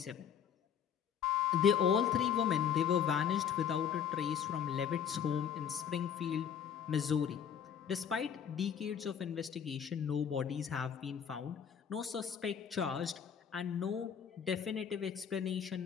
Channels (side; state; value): right; quieter; 8.1 dB